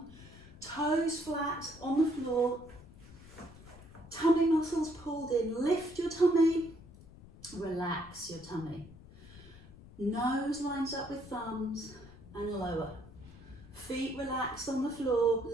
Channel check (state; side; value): noise; left; rumble, 19 dB below the sound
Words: Toes flat on the floor. Tummy muscles pulled in. Lift your tummy. Relax your tummy. Nose lines up with thumbs and lower. Feet relaxed on the floor.